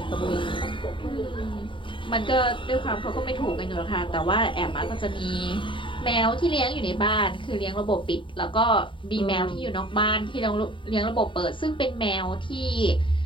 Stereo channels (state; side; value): late; right; 0.24 ms